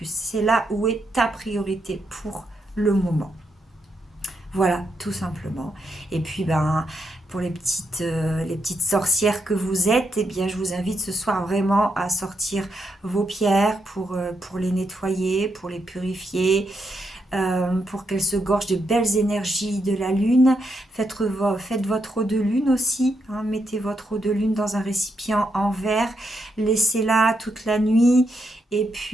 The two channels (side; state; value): both; normal; correlation 0.81